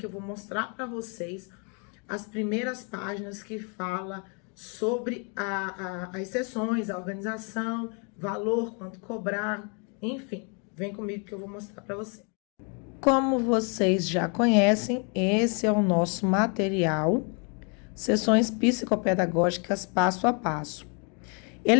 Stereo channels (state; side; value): quieter; right; 36.7 dB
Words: eu vou mostrar para vocês as primeiras páginas que fala sobre as sessões, a organização, valor, quanto cobrar, enfim. Vem comigo que eu vou mostrar para vocês. Como vocês já conhecem, esse é o nosso material, Sessões Psicopedagógicas Passo a Passo.